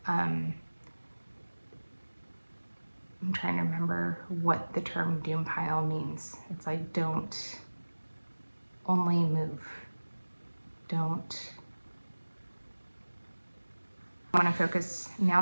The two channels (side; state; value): both; inverted; correlation -1.00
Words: I'm trying to remember what the term doom pile means. It's like, don't only move, don't. I want to focus, now